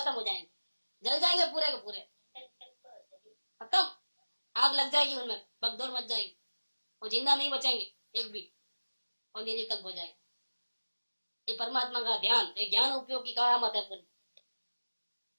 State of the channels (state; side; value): inverted; both; correlation -1.00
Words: हो जाएंगे, जल जाएंगे पूरे के पूरे, खत्म। आग लग जाएगी उनमें, भगदौड़ मच जाएगी, वो जिंदा नहीं बचेंगे। एक भी, और निरीक्षक हो जाए। ये परमात्मा का ध्यान, ये ज्ञान उपयोग की करामत है पूरी।